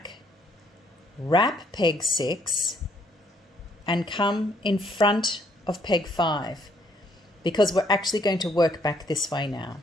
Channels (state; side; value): normal; both; correlation 0.68